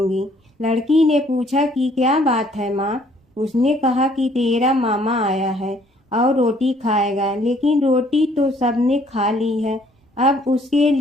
लड़की ने पूछा कि क्या बात है माँ? उसने कहा कि तेरा मामा आया है और रोटी खाएगा, लेकिन रोटी तो सबने खा ली है, अब उसके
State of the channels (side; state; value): both; normal; correlation 0.62